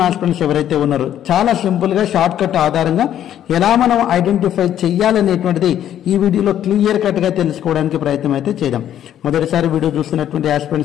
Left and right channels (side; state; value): right; quieter; 10.8 dB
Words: ఆస్పిరెంట్స్ ఎవరైతే ఉన్నారో చాలా సింపుల్ గా షార్ట్ కట్ ఆధారంగా ఎలా మనం ఐడెంటిఫై చేయాలనేటువంటిది ఈ వీడియోలో క్లియర్ కట్ గా తెలుసుకోవడానికి ప్రయత్నం అయితే చేద్దాం. మొదటిసారి వీడియో చూస్తున్నటువంటి